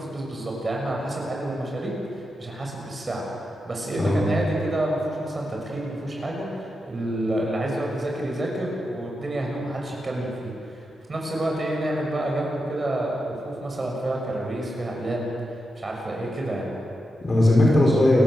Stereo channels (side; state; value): both; normal; correlation 0.88